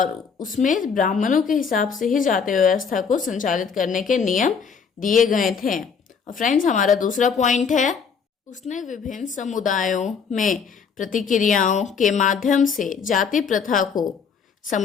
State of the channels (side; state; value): right; quieter; 6.1 dB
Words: उसमें ब्राह्मणों के हिसाब से ही जाति व्यवस्था को संचालित करने के नियम दिए गए थे। और फ्रेंड्स, हमारा दूसरा पॉइंट है, उसने विभिन्न समुदायों में प्रतिक्रियाओं के माध्यम से जाति प्रथा को